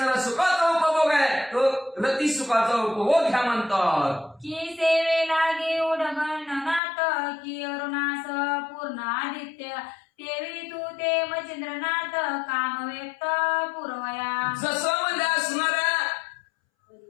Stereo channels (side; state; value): right; drops out; at 6.8 s